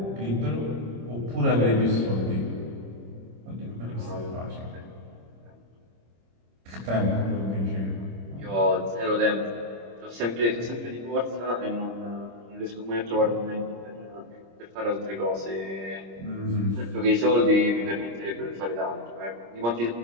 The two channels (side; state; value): left; late; 26 ms